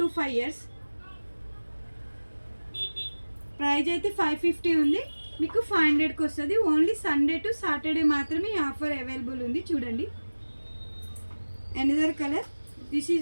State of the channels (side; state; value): both; inverted; correlation -1.00